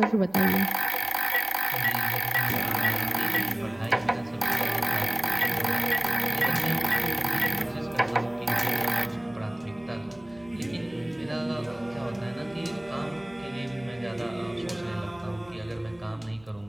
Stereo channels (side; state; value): left; noise; hum, 26 dB below the sound